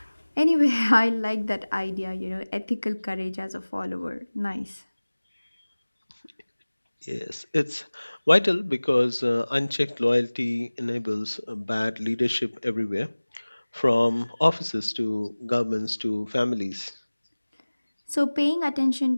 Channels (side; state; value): both; inverted; correlation -1.00